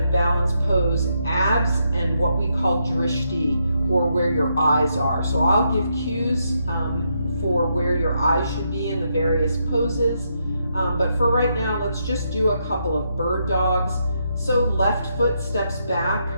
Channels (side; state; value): both; inverted; correlation -0.79